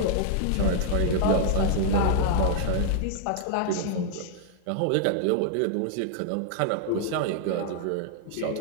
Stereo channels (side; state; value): both; different; correlation 0.00